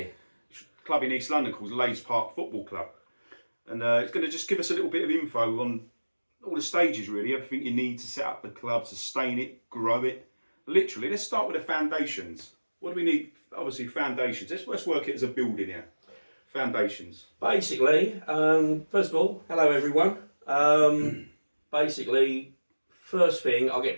Club in East London called Leys Park Football Club. And it's going to just give us a little bit of info on all the stages really, everything you need to set up the club, sustain it, grow it. Literally, let's start with the foundations. What do we need? Obviously foundations. Let's work it as a building here. Foundations. Basically, first of all, hello everyone. Basically, first thing, I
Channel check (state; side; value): inverted; both; correlation -1.00